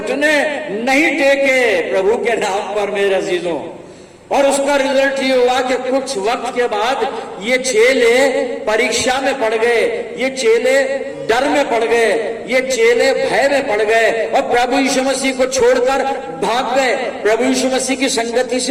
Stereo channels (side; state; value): both; identical; correlation 1.00